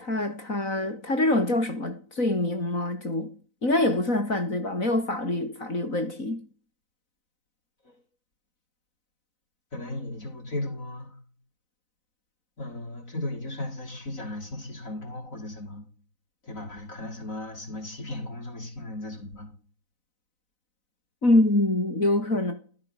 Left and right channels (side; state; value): right; late; 4.0 ms